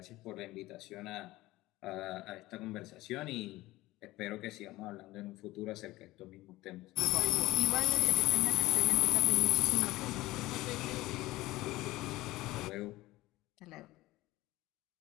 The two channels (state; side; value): quieter; right; 18.3 dB